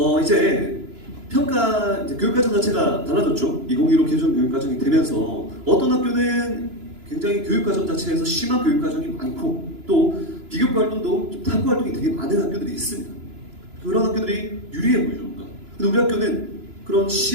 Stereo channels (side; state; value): left; late; 2.9 ms